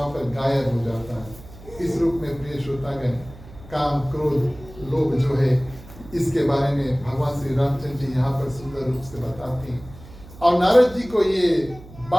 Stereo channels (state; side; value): noise; right; hum, 19 dB below the sound